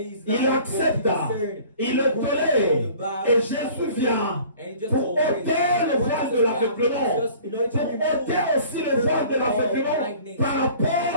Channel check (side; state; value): both; inverted; correlation -0.49